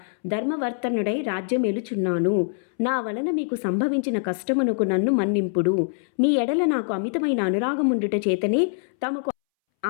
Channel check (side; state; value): right; silent; 63 dB below the other